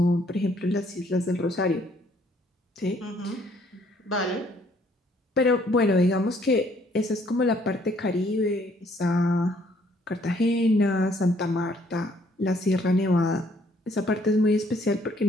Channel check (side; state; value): both; normal; correlation 0.65